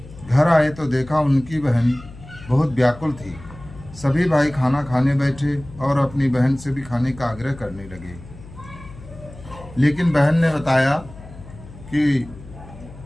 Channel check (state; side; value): noise; left; hum, 17 dB below the sound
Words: घर आए तो देखा उनकी बहन बहुत व्याकुल थी। सभी भाई खाना खाने बैठे और अपनी बहन से भी खाने का आग्रह करने लगे, लेकिन बहन ने बताया कि